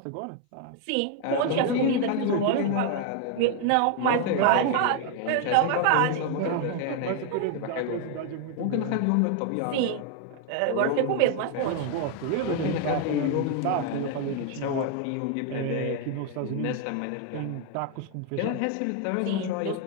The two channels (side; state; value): both; different; correlation 0.00